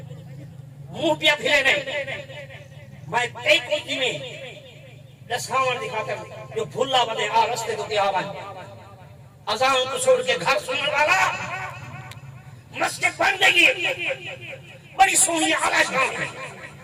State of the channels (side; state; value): both; identical; correlation 1.00